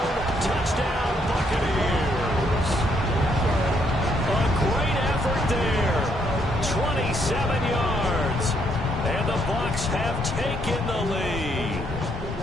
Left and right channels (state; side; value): normal; both; correlation 0.72